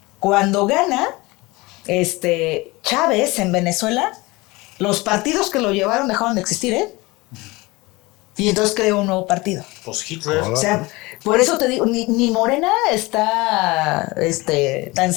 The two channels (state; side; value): quieter; right; 22.7 dB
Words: Cuando gana Chávez en Venezuela, los partidos que lo llevaron dejaron de existir, ¿eh? Y entonces creó un nuevo partido. Pues Hitler. O sea, por eso te digo, ni Morena está tan